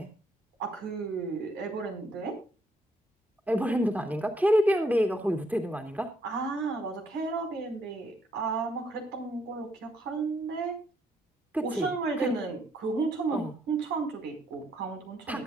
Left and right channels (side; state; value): both; normal; correlation 0.71